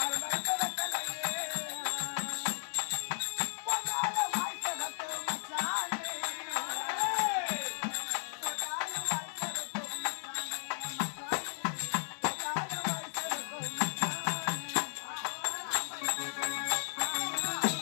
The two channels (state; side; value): silent; right; digital silence